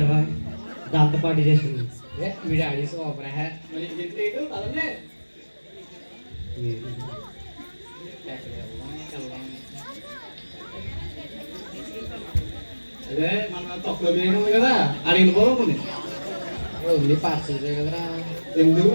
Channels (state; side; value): inverted; both; correlation -1.00